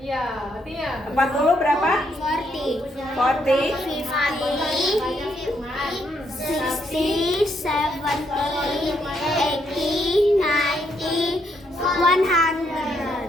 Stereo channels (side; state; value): both; normal; correlation 0.75